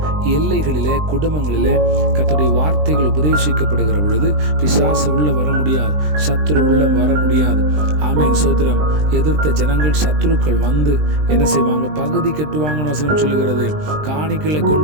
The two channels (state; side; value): late; left; 20 ms